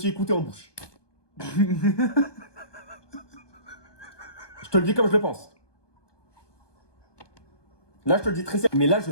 écouté en bouche. Je te le dis comme je le pense. Là, je te le dis très sérieux. Mais là, je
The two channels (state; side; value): late; right; 1.2 ms